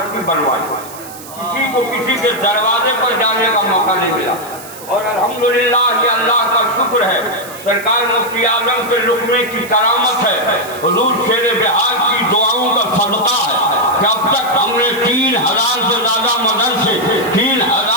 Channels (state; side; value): noise; right; hiss, 16 dB below the sound